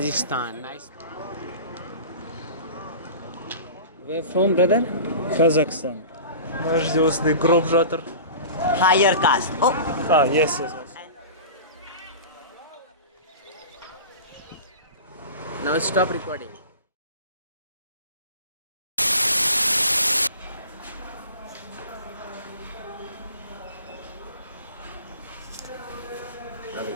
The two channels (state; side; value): inverted; both; correlation -0.36